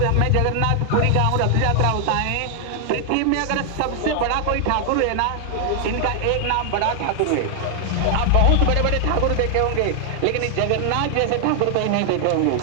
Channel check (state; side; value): different; both; correlation 0.00